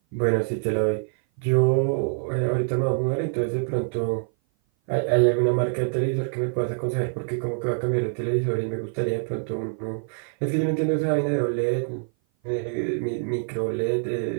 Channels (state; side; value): silent; left; 57 dB below the other